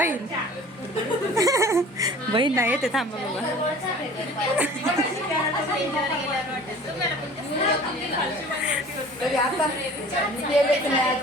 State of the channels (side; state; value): both; normal; correlation 0.45